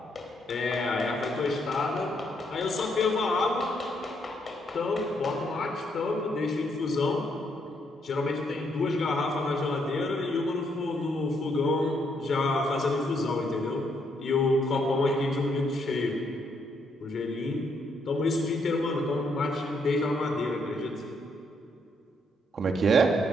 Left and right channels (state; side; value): normal; both; correlation 0.74